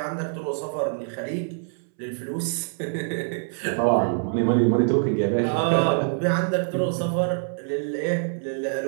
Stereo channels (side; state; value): left; silent; 62 dB below the other